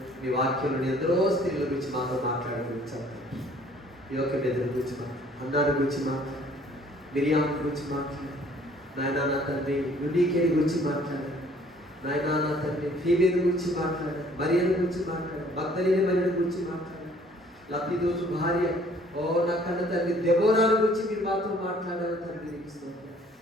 మీ వాక్యంలో ఎందరో స్త్రీల గురించి మాతో మాట్లాడుకుంటారు. యోగబేద గురించి మాట్లాడు, అన్నాడు గురించి మాట్లాడు, మిరియాం గురించి మాట్లాడు, నాయనా నా తండ్రి యునీకేని గురించి మాట్లాడారు, నాయనా నా తండ్రి ఫీబేని గురించి మాట్లాడారు, మరియను గురించి మాట్లాడారు, మగ్దలేని మరియను గురించి మాట్లాడారు, లబ్ధిదోసు భార్య నా కన్న తండ్రి దెబోరాల గురించి మీరు మాతో మాట్లాడారు తండ్రి.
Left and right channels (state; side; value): normal; both; correlation 0.58